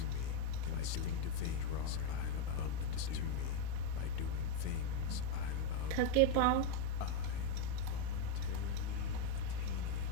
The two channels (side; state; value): both; different; correlation 0.02